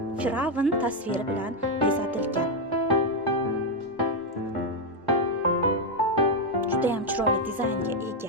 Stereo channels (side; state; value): both; normal; correlation 0.03